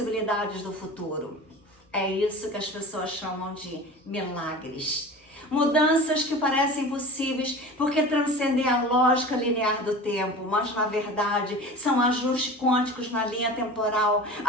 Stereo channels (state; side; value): normal; both; correlation 0.36